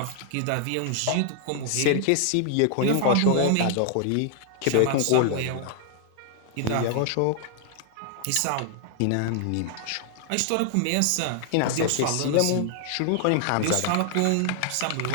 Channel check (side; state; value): both; different; correlation 0.00